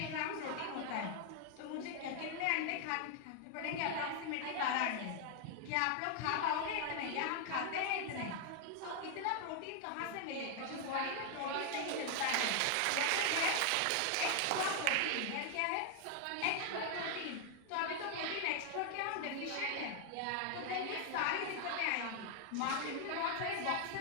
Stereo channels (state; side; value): different; both; correlation 0.00